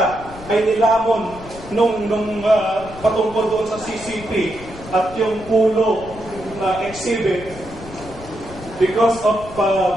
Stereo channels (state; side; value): noise; left; rumble, 16 dB below the sound